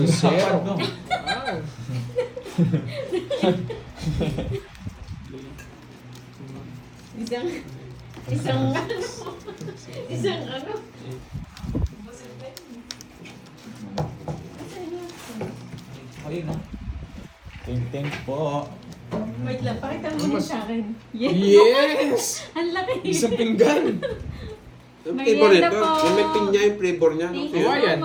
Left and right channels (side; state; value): both; identical; correlation 1.00